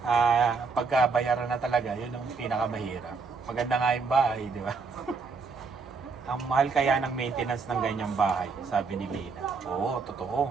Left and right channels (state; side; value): quieter; left; 4.7 dB